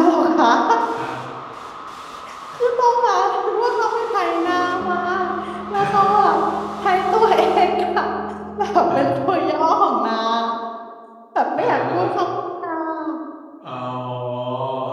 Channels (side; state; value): both; identical; correlation 1.00